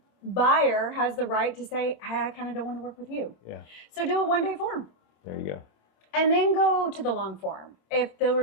buyer has the right to say, hey, I kind of don't want to work with you. Yeah. So do a 1-day form. There you go. And then go to the long form. If the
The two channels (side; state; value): right; late; 26 ms